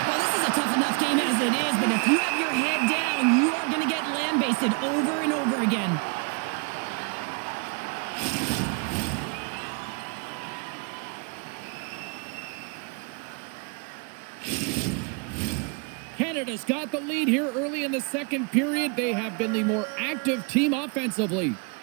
Well, this is a tough enough game as it is, but if you have your head down, you are going to get land-basted over and over again. Canada's got the lead here early in the second period. They have been the more active team offensively.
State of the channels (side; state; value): left; quieter; 34.6 dB